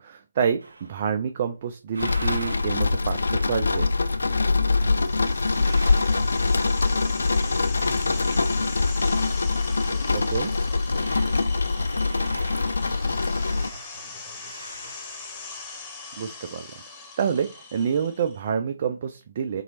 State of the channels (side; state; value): both; inverted; correlation -0.86